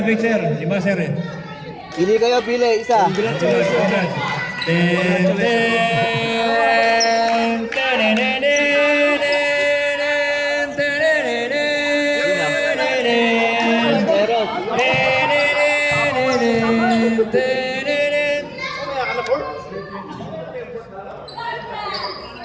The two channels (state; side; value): identical; both; correlation 1.00